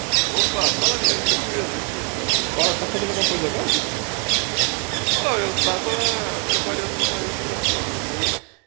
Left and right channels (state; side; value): quieter; left; 36.1 dB